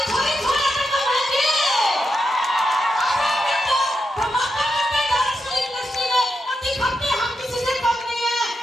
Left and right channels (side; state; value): both; normal; correlation 0.86